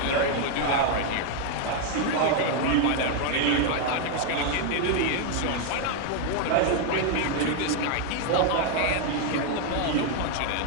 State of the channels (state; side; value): different; both; correlation 0.00